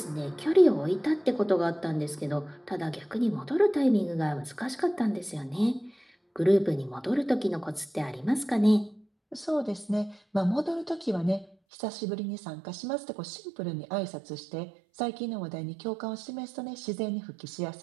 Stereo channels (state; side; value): drops out; left; at 11.6 s